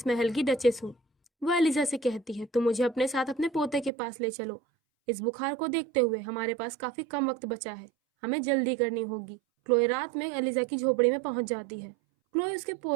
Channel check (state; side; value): drops out; left; at 3.9 s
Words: महल की डचेस हूँ। वो एलिजा से कहती है, तुम मुझे अपने साथ अपने पोते के पास ले चलो। इस बुखार को देखते हुए हमारे पास काफी कम वक्त बचा है, हमें जल्दी करनी होगी। क्लोई रात में एलिजा की झोपड़ी में पहुंच जाती है। क्लोई उसके